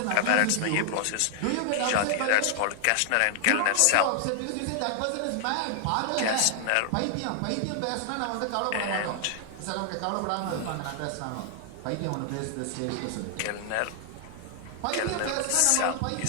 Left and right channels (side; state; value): both; different; correlation 0.00